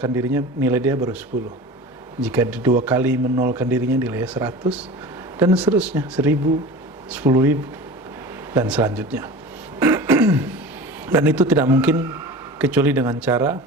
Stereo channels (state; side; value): normal; both; correlation 0.35